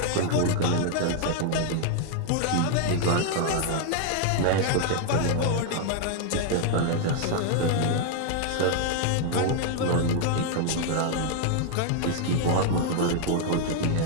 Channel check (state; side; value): different; both; correlation 0.00